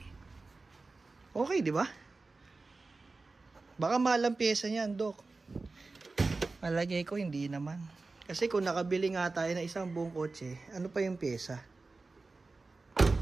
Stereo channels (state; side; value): quieter; left; 3.7 dB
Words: Okay, di ba? Baka mahal ang pyesa niyan, Dok. Malagay ko, hindi naman. Kasi kung nakabili nga tayo ng isang buong kotse, ano pa yung pyesa?